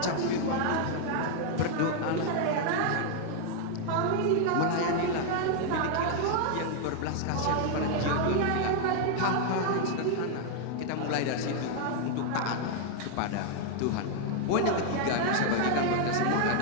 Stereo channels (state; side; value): different; both; correlation 0.00